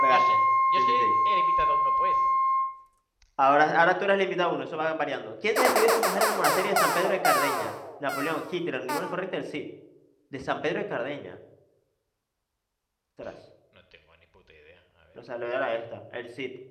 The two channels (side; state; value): both; identical; correlation 1.00